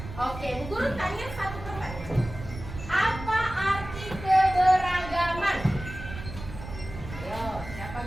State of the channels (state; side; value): noise; right; rumble, 11 dB below the sound